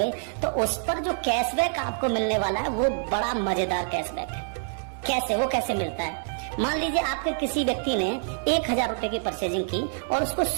तो उस पर जो कैशबैक आपको मिलने वाला है वो बड़ा मजेदार कैशबैक है। कैसे, वो कैसे मिलता है? मान लीजिए आपके किसी व्यक्ति ने 1000 रुपए की परचेजिंग की और उसको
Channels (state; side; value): silent; left; 58 dB below the other